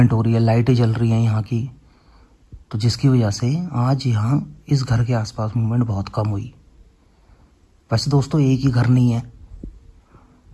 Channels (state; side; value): identical; both; correlation 1.00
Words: हो रही है, लाइटें जल रही हैं यहाँ की, तो जिसकी वजह से आज यहाँ इस घर के आसपास मूवमेंट बहुत कम हुई। वैसे दोस्तों एक ही घर नहीं है,